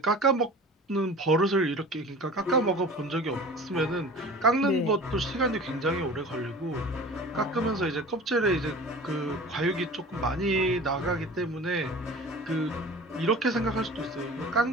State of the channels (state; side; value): normal; both; correlation 0.40